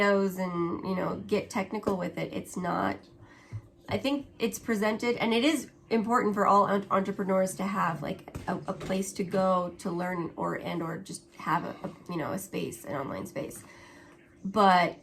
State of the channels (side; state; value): both; identical; correlation 1.00